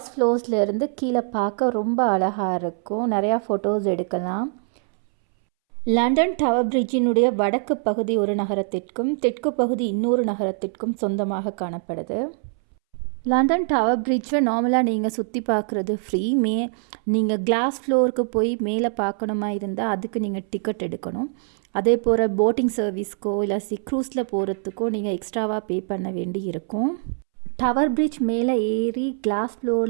ஃப்ளோர்ஸ்லேருந்து கீழே பார்க்க ரொம்ப அழகாக இருக்கும். நிறையா ஃபோட்டோஸ் எடுக்கலாம். லண்டன் டவர் பிரிட்ஜினுடைய வடக்கு பகுதி ஒரு நகரத்திற்கும் தெற்கு பகுதி இன்னொரு நகரத்திற்கும் சொந்தமாக காணப்படுது. லண்டன் டவர் பிரிட்ஜை நார்மலாக நீங்கள் சுற்றி பார்க்குறது ஃப்ரீ. நீங்கள் கிளாஸ் ஃப்ளோருக்கு போய் மேலே பார்க்கணுமா இருந்தால் அதுக்கு நீங்கள் டிக்கெட் எடுக்கணும். அதே போல் போட்டிங் சர்வீஸ்க்கோ இல்லை க்ரூஸில் போகிறதுக்கோ நீங்கள் எக்ஸ்ட்ராவாக பே பண்ண வேண்டி இருக்கும். டவர் பிரிட்ஜ் மேலே ஏறி கிளாஸ்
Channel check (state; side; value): silent; left; 63 dB below the other